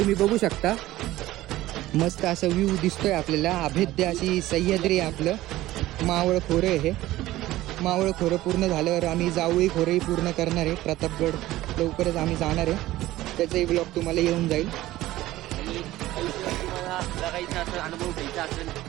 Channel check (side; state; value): left; quieter; 16.2 dB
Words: बघू शकता. मस्त असा व्ह्यू दिसतोय आपल्याला. अभेद्य अशी सह्याद्री आहे आपलं. मावळ खोरं आहे हे. मावळ खोरं पूर्ण झाल्यावर आम्ही जावळी खोरंही पूर्ण करणार आहे. प्रतापगड लवकरच आम्ही जाणार आहे. त्याचाही ब्लॉग तुम्हाला येऊन जाईल. अनुभव घ्यायचा असेल